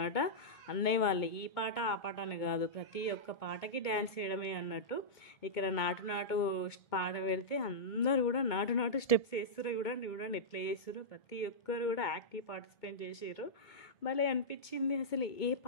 అన్నయ్య వాళ్ళు. ఈ పాట ఆ పాట అని కాదు, ప్రతి ఒక్క పాటకి డ్యాన్స్ చేయడమే అన్నట్టు. ఇక్కడ నాటు పాట పెడితే అందరు కూడా నాటు స్టెప్స్ వేస్తారు. చూడండి ఎట్లా చేస్తారు. ప్రతి ఒక్కరు కూడా యాక్టివ్ పార్టిసిపేట్ చేసారు. భలే అనిపించింది. అసలు ఏ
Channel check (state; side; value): late; right; 2.2 ms